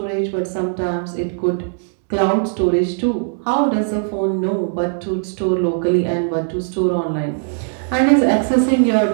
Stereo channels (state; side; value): silent; left; digital silence